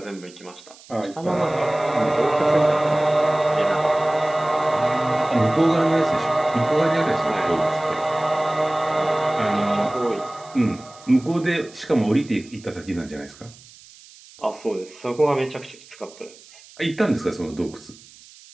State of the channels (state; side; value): noise; right; hiss, 23 dB below the sound